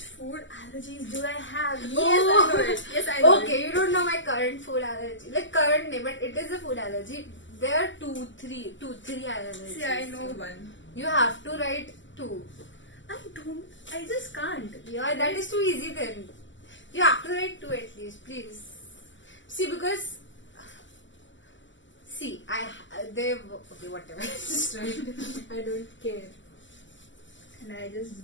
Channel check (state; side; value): late; right; 0.54 ms